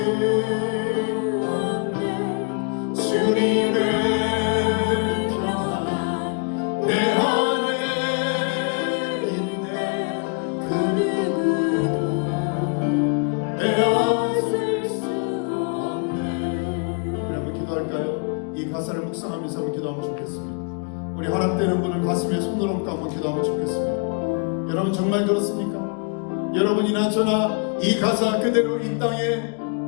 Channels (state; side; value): quieter; right; 35.8 dB